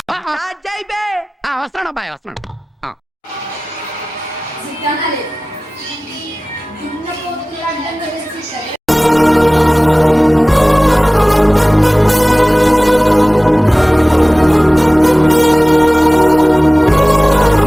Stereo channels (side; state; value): both; normal; correlation 0.98